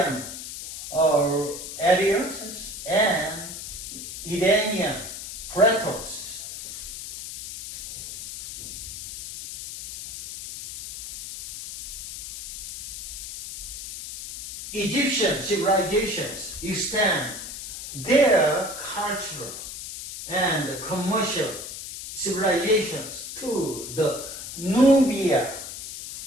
areas and Iranian plateaus. Egyptian civilizations extend their cultural and commercial civilizations to the Nubia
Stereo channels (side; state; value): left; noise; hiss, 9 dB below the sound